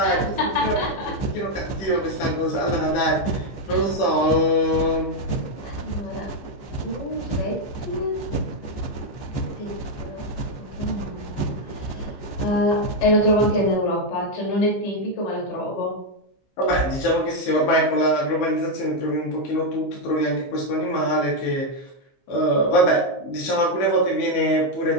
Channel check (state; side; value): late; right; 15 ms